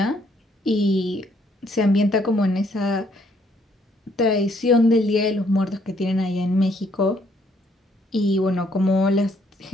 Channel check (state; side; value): normal; both; correlation 0.68